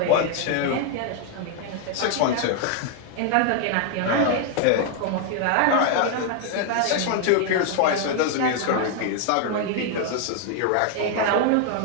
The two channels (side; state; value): both; different; correlation 0.00